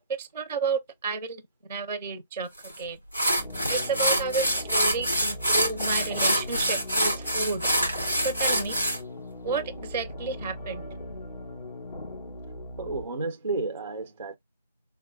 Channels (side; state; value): both; inverted; correlation -0.59